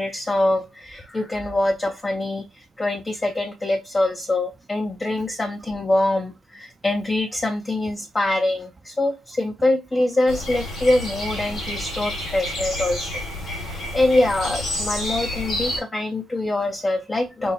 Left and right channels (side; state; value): both; normal; correlation 0.90